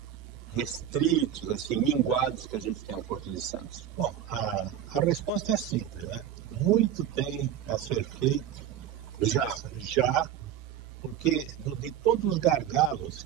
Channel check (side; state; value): left; quieter; 10.6 dB